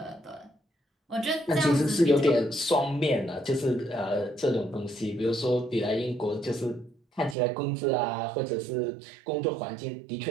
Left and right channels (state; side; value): drops out; left; at 7.4 s